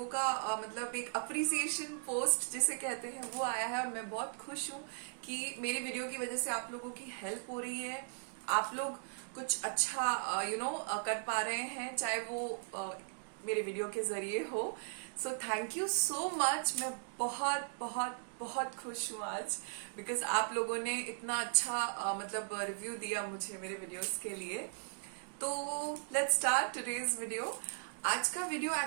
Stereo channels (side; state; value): left; silent; digital silence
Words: का मतलब एक अप्रिसिएशन पोस्ट जिसे कहते हैं वो आया है और मैं बहुत खुश हूँ कि मेरी वीडियो की वजह से आप लोगों की हेल्प हो रही है। आप लोग कुछ अच्छा कर पा रहे हैं, चाहे वो मेरे वीडियो के जरिए हो। So thank you so much. मैं बहुत बहुत बहुत खुश हूँ आज बिकॉज आप लोगों ने इतना अच्छा मतलब रिव्यू दिया मुझे मेरे वीडियोस के लिए। तो लेट्स स्टार्ट टुडेज वीडियो। आज का वीडियो